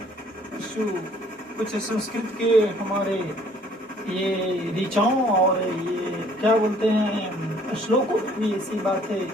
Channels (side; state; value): both; normal; correlation 0.59